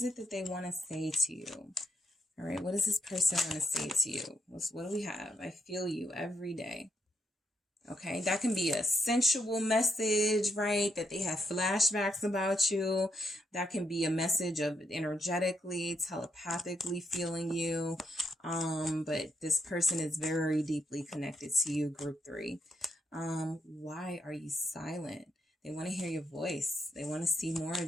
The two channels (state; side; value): normal; both; correlation 0.79